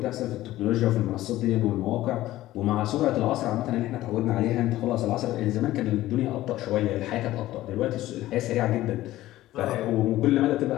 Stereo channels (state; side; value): quieter; right; 15.5 dB